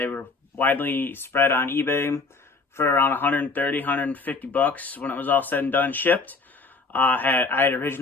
were widely spread on eBay for around 130, 150 bucks when it was all said and done, shipped. I had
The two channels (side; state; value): right; quieter; 4.0 dB